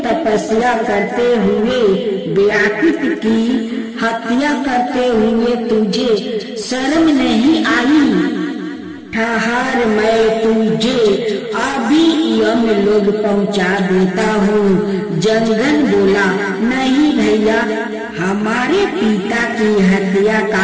तपस्या करते हुए व्याकुत की हत्या करते हुए तुझे शर्म नहीं आई? ठहर, मैं तुझे अभी यम लोग पहुंचा देता हूँ। जंगन बोला, नहीं भैया, हमारे पिता की हत्या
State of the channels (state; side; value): identical; both; correlation 1.00